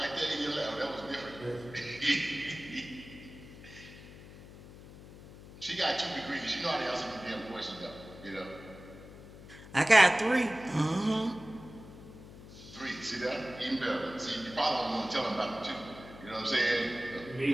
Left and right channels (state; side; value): noise; left; hum, 17 dB below the sound